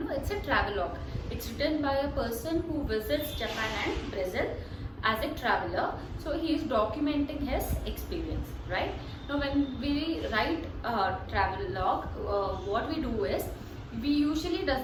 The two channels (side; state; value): both; identical; correlation 1.00